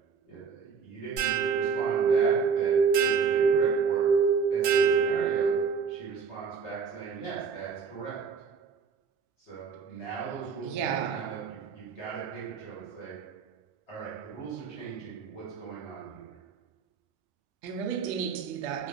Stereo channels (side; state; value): left; quieter; 6.0 dB